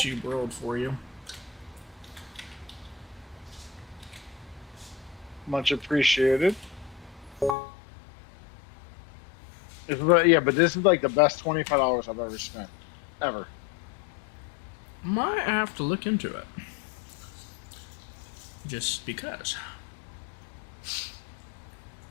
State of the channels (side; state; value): right; drops out; at 7.6 s